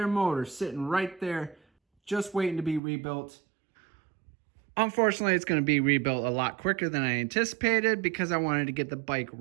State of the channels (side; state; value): left; drops out; at 2.8 s